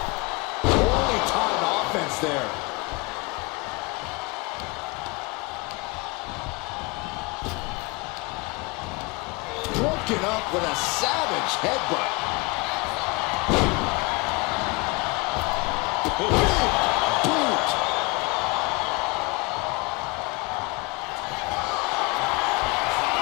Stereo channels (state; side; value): quieter; right; 26.6 dB